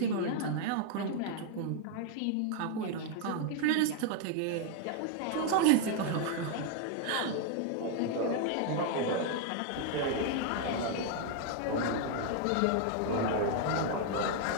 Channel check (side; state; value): both; different; correlation 0.00